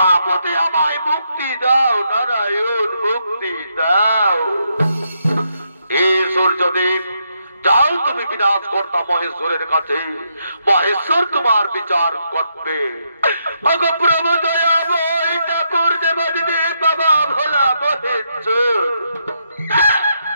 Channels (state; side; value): inverted; both; correlation -0.79